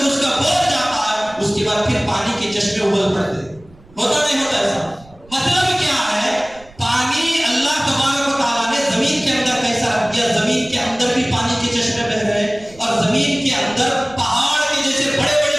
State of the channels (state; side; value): noise; right; rumble, 25 dB below the sound